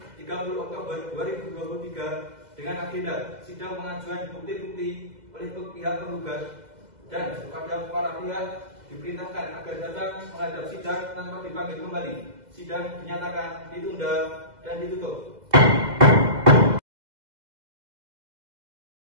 30 Oktober 2023 dengan agenda sidang pengajuan bukti-bukti oleh pihak penggugat dan kepada para pihak diperintahkan agar datang menghadap sidang tanpa dipanggil kembali. Sidang dinyatakan ditunda dan ditutup.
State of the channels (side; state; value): left; late; 2.0 ms